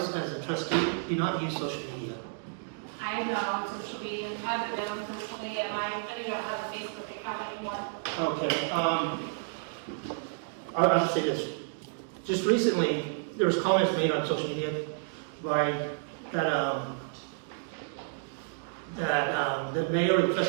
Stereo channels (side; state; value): left; silent; digital silence